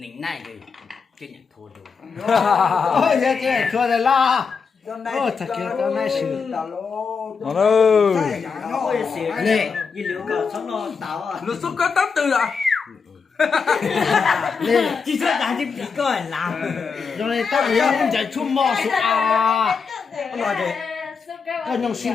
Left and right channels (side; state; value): right; quieter; 5.5 dB